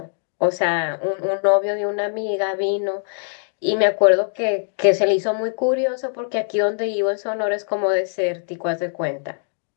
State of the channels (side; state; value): right; silent; digital silence